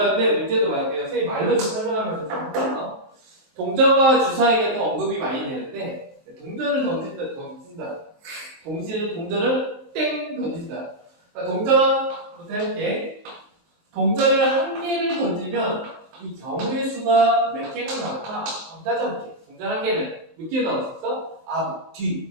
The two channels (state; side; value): late; left; 19 ms